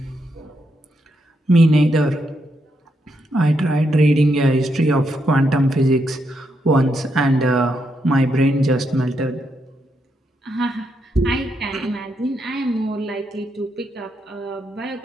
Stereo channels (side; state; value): both; normal; correlation 0.80